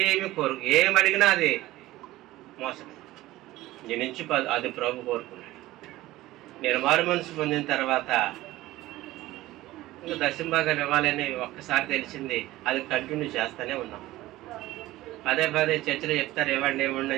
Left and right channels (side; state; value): left; quieter; 16.9 dB